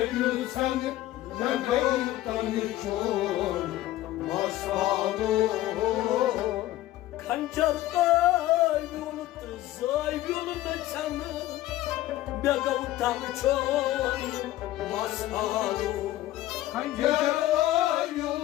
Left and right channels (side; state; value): right; quieter; 15.1 dB